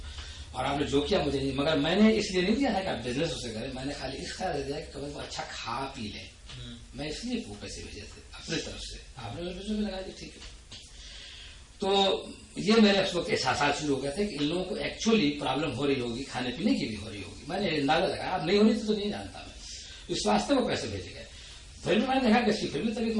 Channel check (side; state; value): both; identical; correlation 1.00